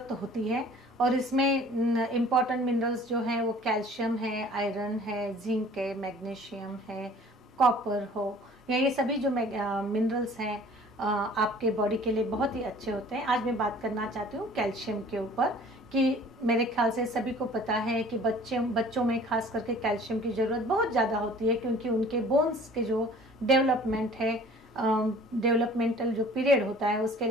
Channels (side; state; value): both; normal; correlation 0.49